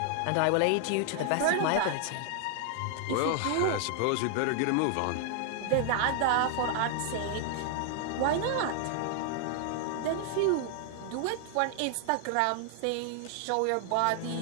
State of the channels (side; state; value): both; different; correlation 0.00